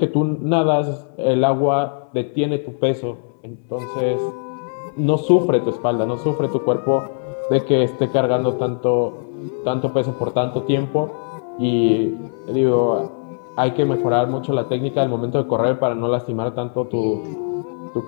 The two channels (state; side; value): silent; right; 65 dB below the other